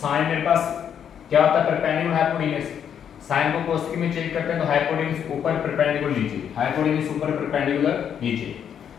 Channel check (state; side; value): quieter; right; 8.5 dB